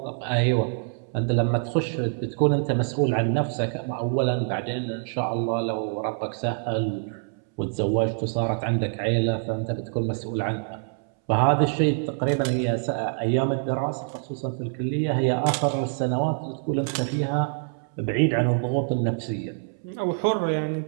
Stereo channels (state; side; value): silent; left; 61 dB below the other